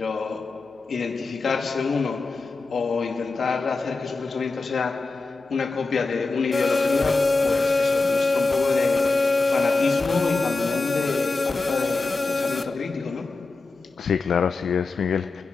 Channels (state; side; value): quieter; right; 3.8 dB